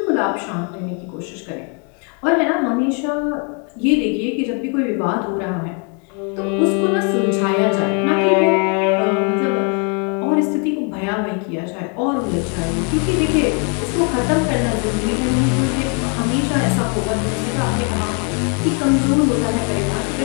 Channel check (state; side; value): quieter; right; 36.3 dB